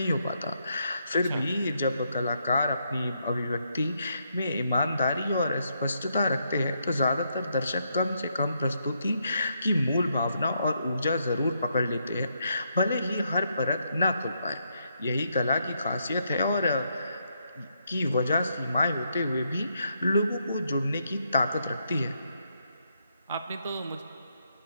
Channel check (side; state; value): both; inverted; correlation -0.78